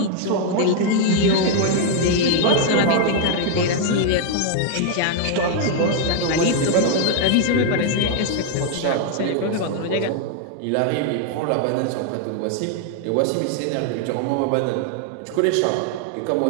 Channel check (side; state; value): both; different; correlation 0.00